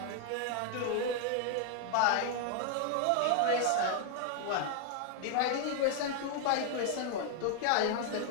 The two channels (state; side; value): different; both; correlation 0.00